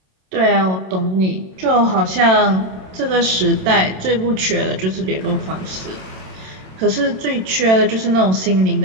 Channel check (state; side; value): late; left; 27 ms